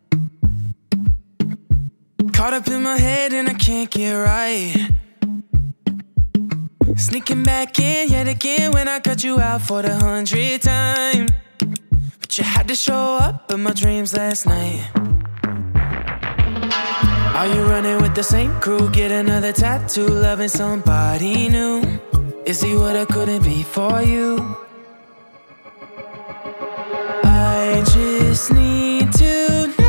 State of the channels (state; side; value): inverted; both; correlation -1.00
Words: Caught up in my head and I can't get right. Sneaking back in yet again when I cut you out for the 100th time. But you had to show up in my dreams last night. Are you running with the same crew? Get another tattoo, loving somebody new. Is he what I couldn't be for you? I just need to